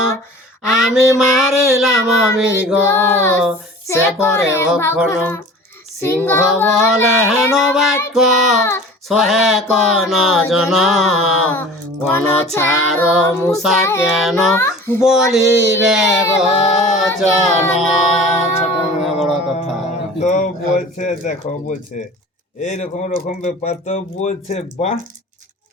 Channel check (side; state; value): both; normal; correlation 0.42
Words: আমি মারিলাম মৃগ সে করে ভক্ষণ সিংহ বলে হেন বাক্য সহে কন জন কোন ছাড় মুসা কেন বলিবে বচন। ছোট মেয়ে বড় কথা। তো বলছে দেখো বলছে এইরকম রকম ব্যাপার তো বলছে বাহ